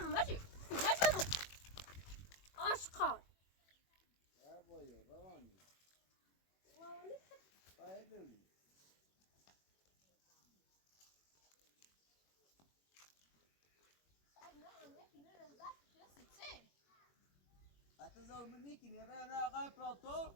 مجبور عاشقان بابایو روانی هتظهر منك يا انا غايب بلاطو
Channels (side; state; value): right; late; 21 ms